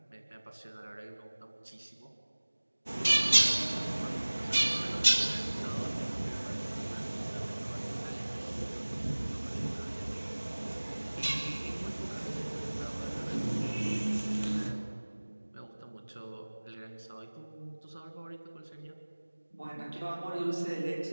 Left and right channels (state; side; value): inverted; both; correlation -1.00